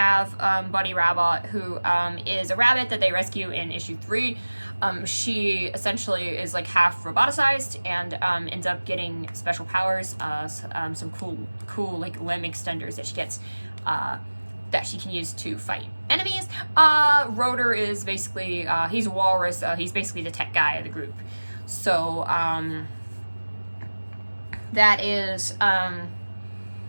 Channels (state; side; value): inverted; both; correlation -1.00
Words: Bunny Rabbit, who is a rabbit that they rescue in issue 3. She essentially is half roboticized and ends up getting special powers, some cool limb extenders that she gets that she can use to fight enemies. Rotor is basically he's a walrus. He's basically the tech guy of the group. So that is